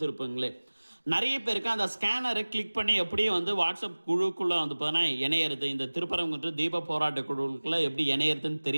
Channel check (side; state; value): both; inverted; correlation -1.00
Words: நிறைய பேருக்கு அந்த ஸ்கேனரை கிளிக் பண்ணி எப்படி வாட்ஸ்அப் குழுக்குள்ளே பார்த்தோன்னா இணையிறது, இந்த திருப்பரங்குன்றம் தீப போராட்ட குழுக்குள்ளே எப்படி இணையிறதுன்னு